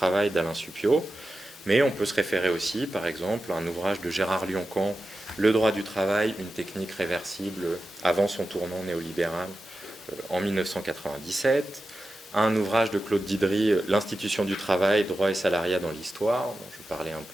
d'Alain Supiot, mais on peut se référer aussi, par exemple, à un ouvrage de Gérard Lioncan, Le droit du travail, une technique réversible avant son tournant néolibéral en 1997, à un ouvrage de Claude Didry, L'institution du travail, droit et salariat dans l'histoire, dont je parlais un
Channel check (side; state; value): both; normal; correlation 0.92